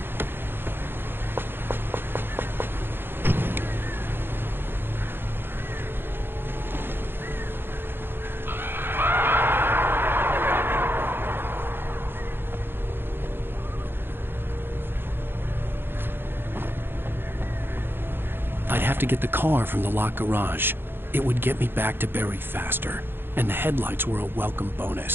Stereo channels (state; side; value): late; left; 0.10 ms